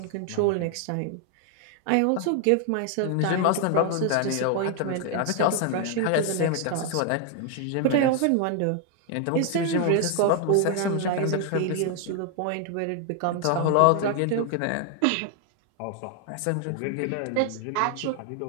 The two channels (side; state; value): both; different; correlation 0.00